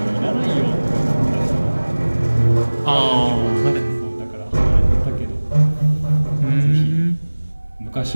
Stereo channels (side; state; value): both; inverted; correlation -1.00